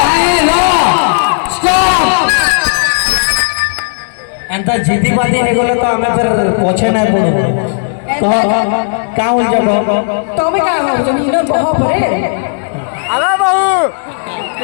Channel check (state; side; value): silent; right; digital silence